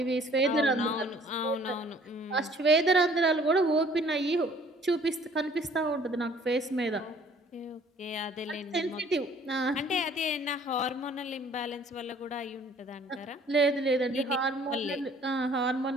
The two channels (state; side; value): normal; both; correlation 0.56